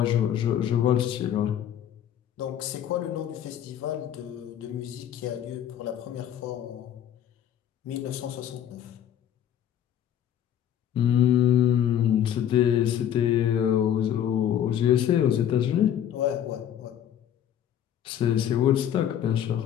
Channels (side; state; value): right; quieter; 10.1 dB